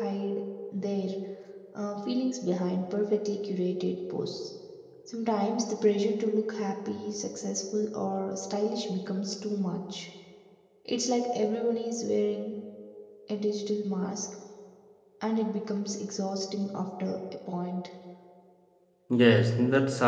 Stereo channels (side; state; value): both; identical; correlation 1.00